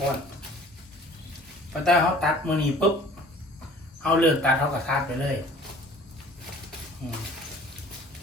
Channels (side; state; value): both; normal; correlation 0.49